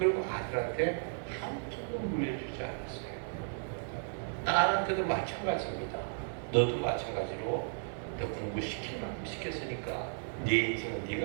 아들한테 한쪽도 물려주지 않았어요. 딸한테도 마찬가지입니다. 너도 마찬가지로 너 공부시킬 만큼 시켰으니까 네 인생은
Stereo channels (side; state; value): left; silent; digital silence